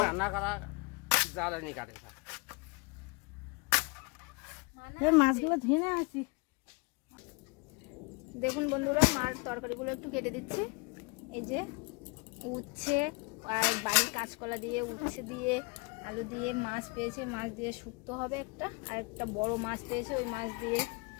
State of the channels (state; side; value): quieter; right; 29.3 dB